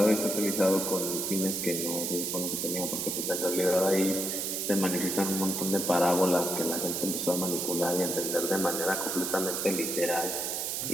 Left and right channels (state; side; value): noise; right; hiss, 2 dB below the sound